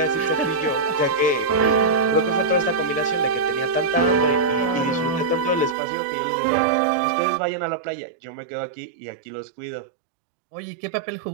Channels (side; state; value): left; drops out; at 5.8 s